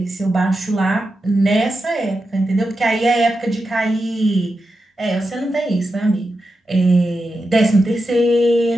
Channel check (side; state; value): both; normal; correlation 0.89